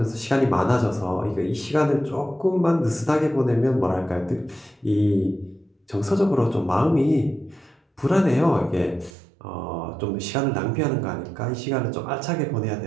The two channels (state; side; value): drops out; left; at 9.2 s